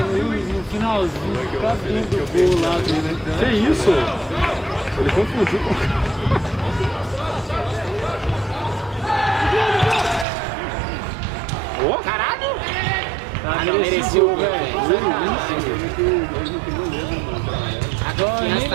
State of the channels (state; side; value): drops out; left; at 10.2 s